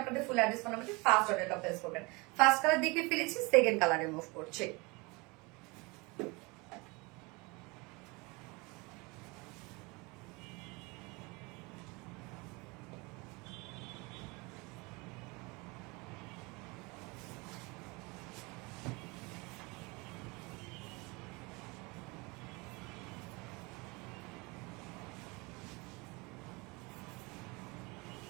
আপনাদের ফুল অ্যাড্রেস ফোন নাম্বারে ফার্স্ট অর্ডারটা প্লেস করবেন। ফার্স্ট কালার দেখে ফেলেছি, সেকেন্ড কালারে মুভ করছে।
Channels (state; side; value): quieter; left; 26.4 dB